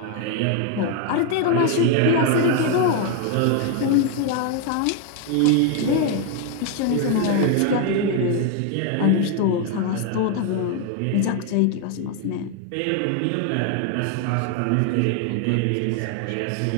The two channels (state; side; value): different; both; correlation 0.01